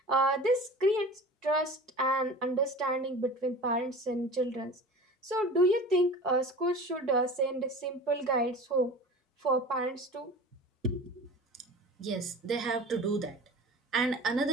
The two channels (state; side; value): normal; both; correlation 0.37